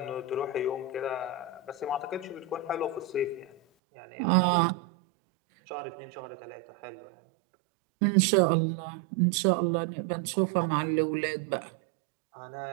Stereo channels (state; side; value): drops out; left; at 3.6 s